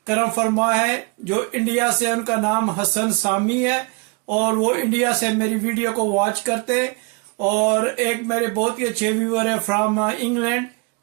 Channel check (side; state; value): left; quieter; 30.5 dB